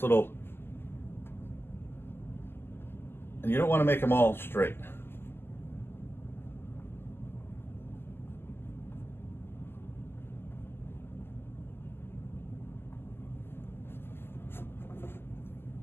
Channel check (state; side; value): late; right; 0.11 ms